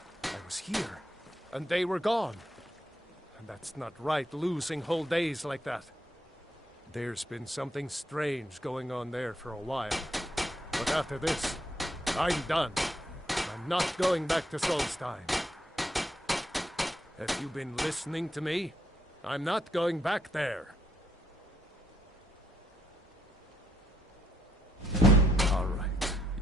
I was here, and they were gone. And that's not right, losing whole days like that. There's been something strange going on there for a while. But after this, I'm done. I'm not going back to Solstheim. Have you been listening to me? I'm not going back there. All right,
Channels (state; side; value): normal; both; correlation 0.75